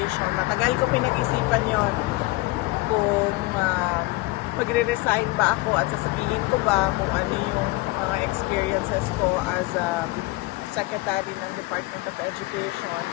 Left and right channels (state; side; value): quieter; right; 21.2 dB